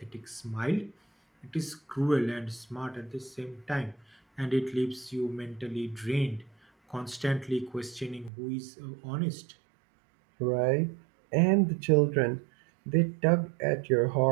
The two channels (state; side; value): drops out; left; at 8.3 s